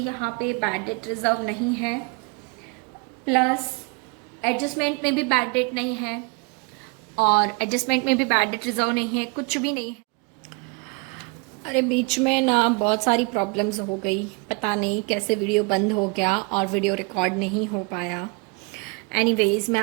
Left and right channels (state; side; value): quieter; left; 30.3 dB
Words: यहाँ पे बैड डेट रिजर्व नहीं है, प्लस एडजस्टमेंट में भी बैड डेट नहीं है और एडजस्टमेंट में भी बैड डेट रिजर्व नहीं है, कुछ भी नहीं है। अरे बीच में ना बहुत सारी प्रॉब्लम्स हो गई, पता नहीं कैसे वीडियो बंद हो गया और वीडियो रिकॉर्ड नहीं हो पाया। एनीवेज मैं